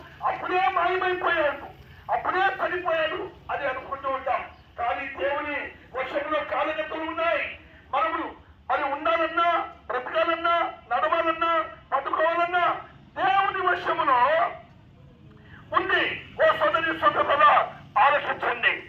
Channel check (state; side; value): identical; both; correlation 1.00